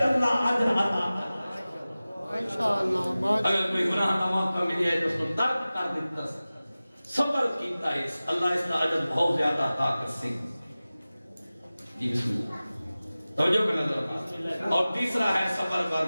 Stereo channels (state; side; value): inverted; both; correlation -0.97